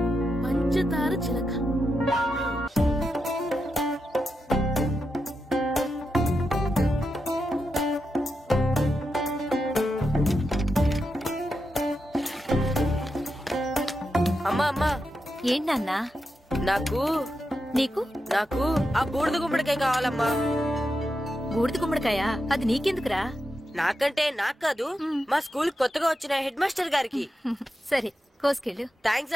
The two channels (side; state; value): both; normal; correlation 0.87